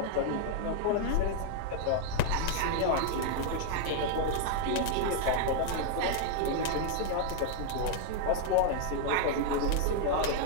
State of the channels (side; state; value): both; different; correlation 0.00